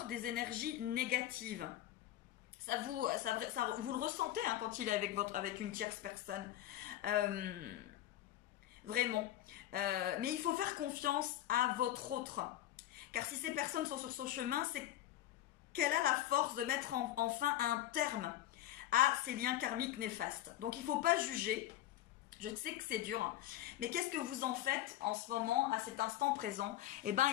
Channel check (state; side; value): quieter; right; 13.7 dB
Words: des énergies négatives. Vous le ressentez hein, quand il est avec une tierce personne. Vraiment. Mais il faut faire confiance à votre autre. Car si ces personnes sont sur son chemin, c'est qu'elle a la force de mettre enfin un terme à ces liens karmiques néfastes. Donc il ne faut pas juger. Je sais que c'est dur, hein. Mais qu'est-ce que vous en faites en ce moment, à cet instant présent? Eh bien,